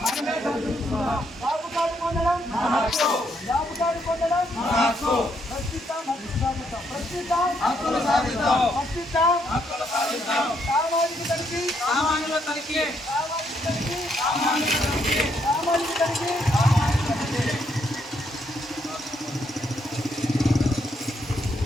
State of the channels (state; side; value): normal; both; correlation 0.74